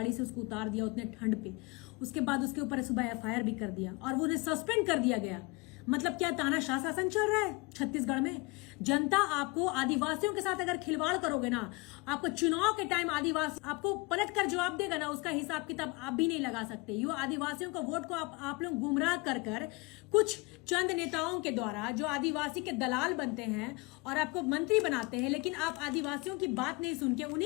से उसको उतार दिया उतने ठंड पे। उसके बाद उसके ऊपर सुबह एफआईआर भी कर दिया और वो उन्हें सस्पेंड कर दिया गया। मतलब क्या तानाशाह शासन चल रहा है छत्तीसगढ़ में? जनता आपको आदिवासियों के साथ अगर खिलवाड़ करोगे ना, आपको चुनाव के टाइम आदिवासी आपको पलट कर जवाब देगा ना, उसका हिसाब किताब आप भी नहीं लगा सकते। यो आदिवासियों का वोट को आप लोग गुमराह कर कर कुछ चंद नेताओं के द्वारा जो आदिवासी के दलाल बनते हैं और आपको मंत्री बनाते हैं, लेकिन आप आदिवासियों की बात नहीं सुन के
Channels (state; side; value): quieter; right; 26.3 dB